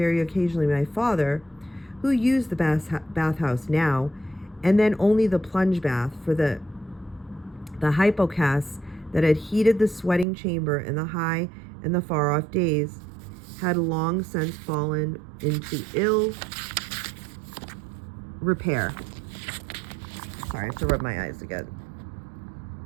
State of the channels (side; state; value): left; drops out; at 10.2 s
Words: occasionally my father, who used the bathhouse now, and then only the plunge bath, for the hypocas that had heated the sweating chamber in the high and the far-off days had long since fallen into ill repair. Sorry, I have to rub my eyes again.